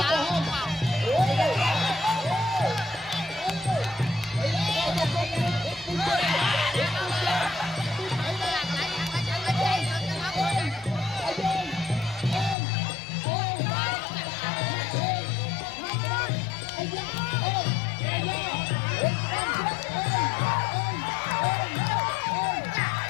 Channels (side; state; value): right; drops out; at 12.6 s